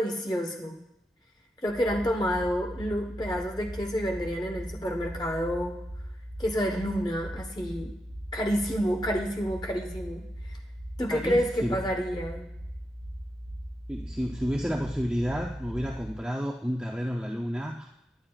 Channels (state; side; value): normal; both; correlation 0.86